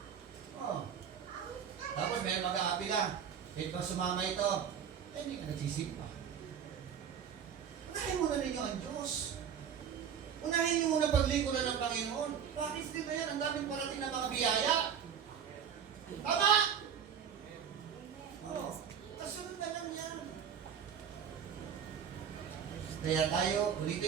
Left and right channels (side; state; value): left; quieter; 8.0 dB